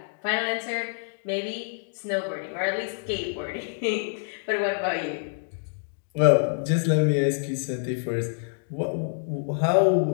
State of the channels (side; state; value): right; silent; digital silence